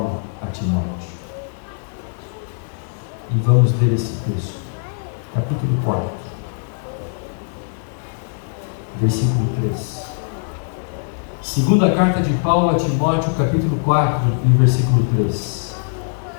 a Timóteo. E vamos ler esse texto. Capítulo 4. Versículo 3. Segunda carta de Paulo a Timóteo, capítulo 4, e versículo 3.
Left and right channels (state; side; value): silent; right; digital silence